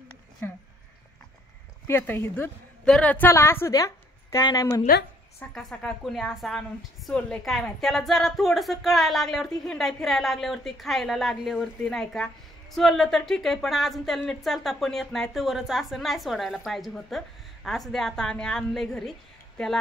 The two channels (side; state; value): both; normal; correlation 0.65